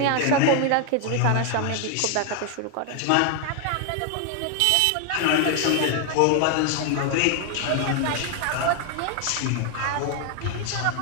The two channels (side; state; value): both; different; correlation 0.00